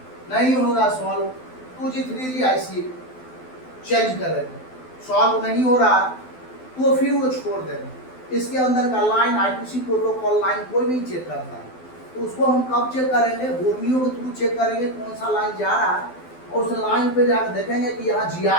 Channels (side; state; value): right; late; 12 ms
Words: नहीं होगा solve, 2G 3G IC change करेगा, सॉल्व नहीं हो रहा तो फिर वो छोड़ देगा। इसके अंदर का लाइन I2C प्रोटोकॉल लाइन कोई नहीं चेक करता है, तो उसको हम कब चेक करेंगे? बोर्नियो के थ्रू चेक करेंगे कौन सा लाइन जा रहा है और उस लाइन पे जाकर देखेंगे कि यहाँ